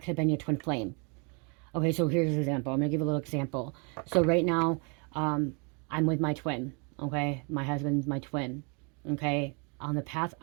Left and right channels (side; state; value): left; quieter; 34.6 dB